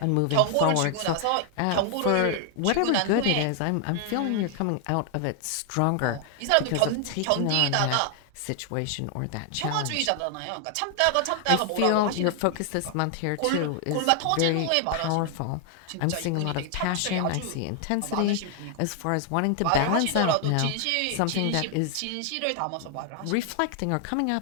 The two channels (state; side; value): different; both; correlation 0.00